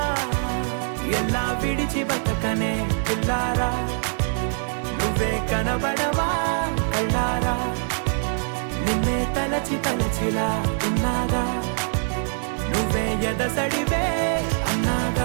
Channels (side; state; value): left; silent; 63 dB below the other